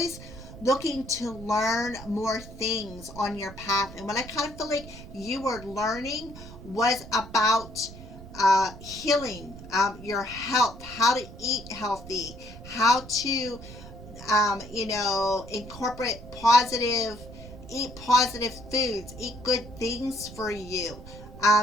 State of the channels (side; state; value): right; noise; rumble, 15 dB below the sound